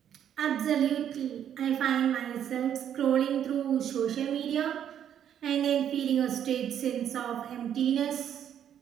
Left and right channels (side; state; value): left; quieter; 9.6 dB